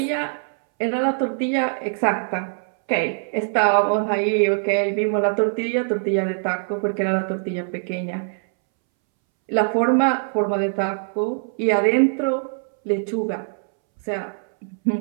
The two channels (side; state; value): left; silent; 64 dB below the other